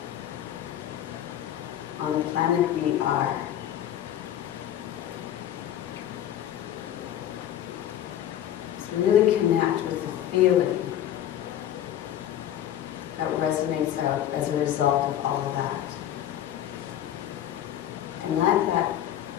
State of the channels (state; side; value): quieter; right; 11.3 dB